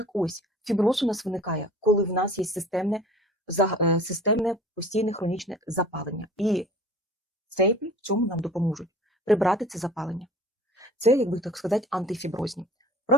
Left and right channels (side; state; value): both; normal; correlation 0.45